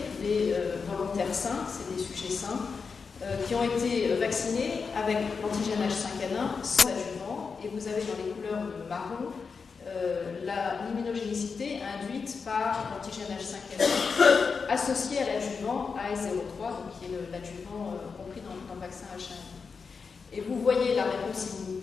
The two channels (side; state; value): right; quieter; 5.2 dB